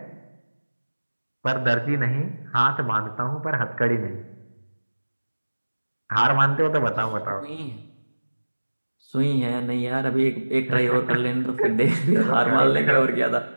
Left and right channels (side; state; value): both; inverted; correlation -1.00